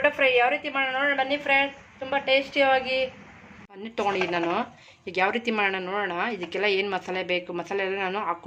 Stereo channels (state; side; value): identical; both; correlation 1.00